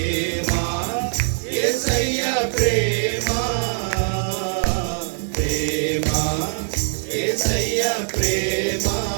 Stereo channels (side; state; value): left; silent; digital silence